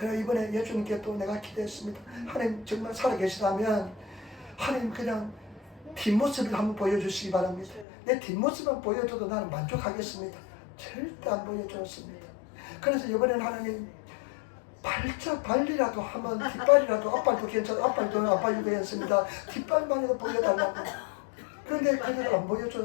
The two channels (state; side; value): drops out; right; at 7.9 s